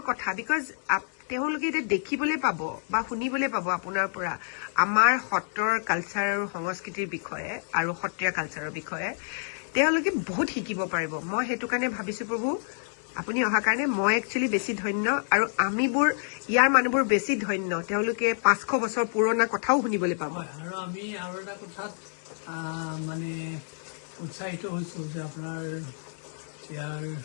কথা বিকজ তেওঁলোকে এতিয়া দেখিবলৈ পাব বা শুনিবলৈ পাব আপোনাৰ পৰা আমাৰ সত্ৰৰ কালচাৰ আৰু সংস্কৃতিৰ বিষয়ে আৰু সত্ৰীয়া কালচাৰৰ বিষয়ে তেওঁলোকে বহুত শিকিব পাৰিব মই সেইটো কাৰণে ভাবিছো প্ৰভু আপুনি অহাৰ কাৰণে মই একচুৱেলি বেছি ধন্য আৰু আমিবোৰ ইয়াৰ মানুহবোৰ বেছি ধন্য তেওঁলোকে 500 বছৰ পুৰণা কথাও শুনিবলৈ পাব আৰু আমি আৰু এটা কথাত মানে উৎসাহিত হৈছোঁ যে আপোনাৰ ইয়াৰ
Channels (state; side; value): silent; right; digital silence